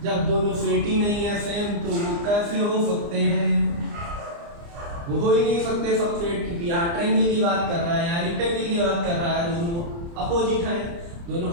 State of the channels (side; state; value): left; late; 29 ms